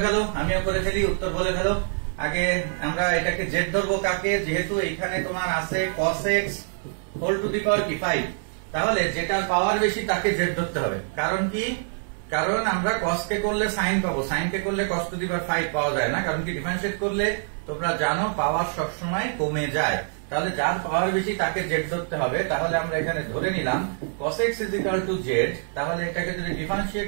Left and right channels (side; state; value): left; silent; 57 dB below the other